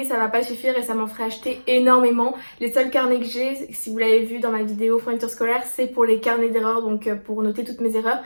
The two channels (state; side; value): inverted; both; correlation -1.00